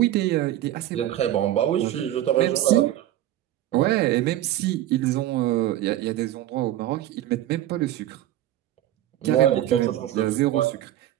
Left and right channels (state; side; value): quieter; left; 13.4 dB